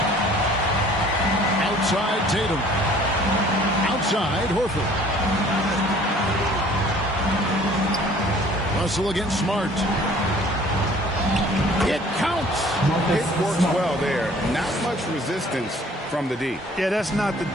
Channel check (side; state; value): both; normal; correlation 0.53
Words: Outside Tatum. Outside Horford. Russell against Smart. It counts. It works well there. Not much resistance from the D. Yeah, that's not the